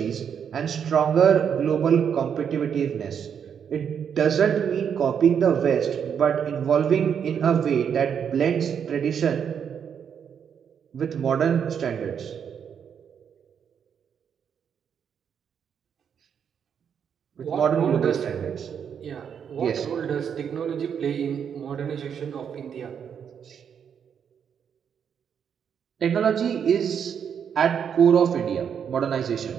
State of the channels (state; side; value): quieter; left; 7.7 dB